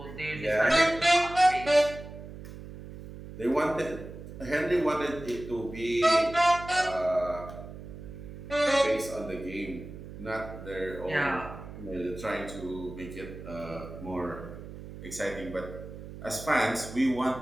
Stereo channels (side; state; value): right; noise; hum, 13 dB below the sound